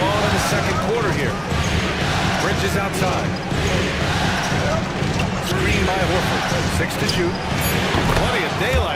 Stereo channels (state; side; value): identical; both; correlation 1.00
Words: Bridges outside. Screen by Horford. 6 to shoot. Plenty of